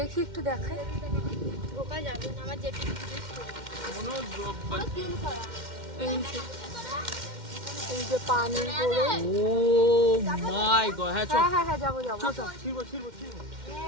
একটু দেখাই। ঢোকা যাবে না, আমার যেটা এই যে পানের বোরোজ। ও মাই গড, হ্যাঁ হ্যাঁ হ্যাঁ হ্যাঁ যাবো যাবো।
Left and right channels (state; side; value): late; left; 2.1 ms